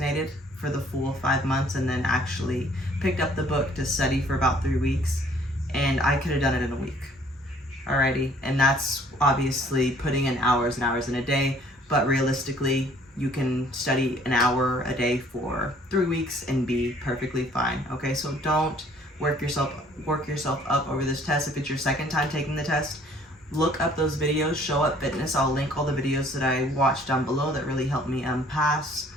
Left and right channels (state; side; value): normal; both; correlation 0.58